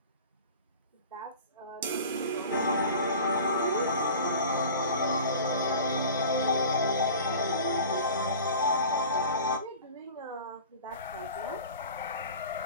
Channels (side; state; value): both; inverted; correlation -0.40